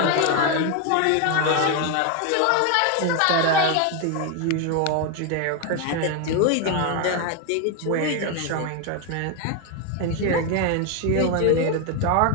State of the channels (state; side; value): different; both; correlation 0.01